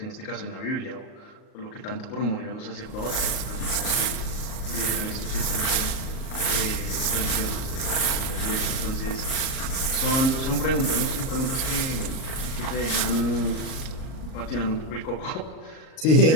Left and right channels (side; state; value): right; late; 38 ms